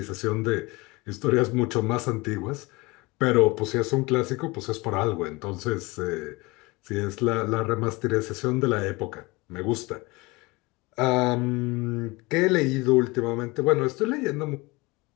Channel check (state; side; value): quieter; right; 23.9 dB